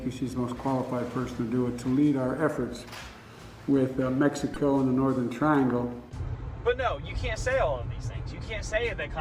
she's the most qualified person to do it, to lead our efforts with Mexico and the Northern Triangle. But no, you can't say all of these things. You can't say that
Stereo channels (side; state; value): both; identical; correlation 1.00